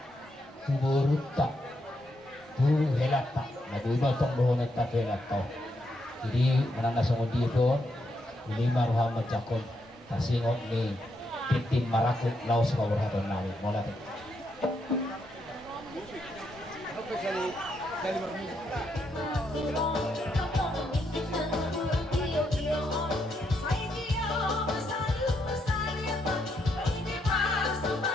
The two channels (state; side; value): normal; both; correlation 0.79